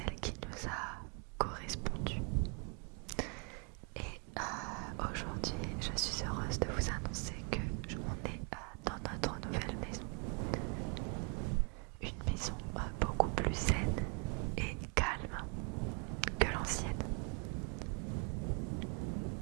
qui nous a correspondu. Et aujourd'hui, je suis heureuse de vous annoncer que on est dans notre nouvelle maison. Une maison beaucoup plus saine et calme que l'ancienne.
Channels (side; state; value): left; quieter; 35.3 dB